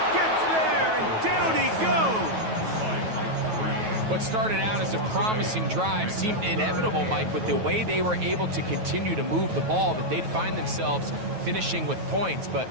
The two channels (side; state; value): left; late; 9.3 ms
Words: gets there, and down he goes. What started out as a promising drive seemed inevitable, Mike, with the way they were able to continue to move the ball, that they'd find themselves finishing with points. But